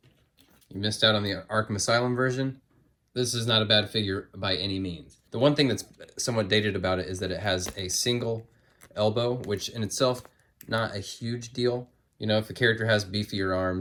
you missed out on the Arkham Asylum version, this is not a bad figure by any means. The one thing that's somewhat dated about it is that it has a single elbow, which in itself, not a huge deal. You know, if the character has beefier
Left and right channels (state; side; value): identical; both; correlation 1.00